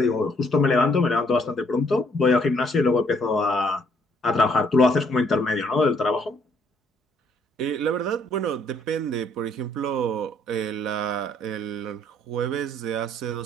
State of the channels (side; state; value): both; normal; correlation 0.66